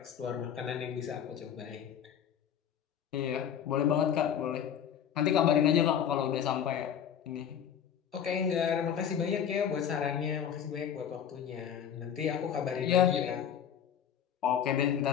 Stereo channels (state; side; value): quieter; right; 8.8 dB